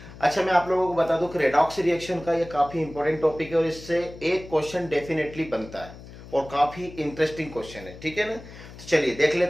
अच्छा, मैं आप लोगों को बता दूं कि रेडॉक्स रिएक्शन का ये काफी इंपॉर्टेंट टॉपिक है और इससे एक क्वेश्चन डेफिनेटली बनता है और काफी इंटरेस्टिंग क्वेश्चन है। ठीक है ना, तो चलिए देख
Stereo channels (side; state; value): left; noise; hum, 16 dB below the sound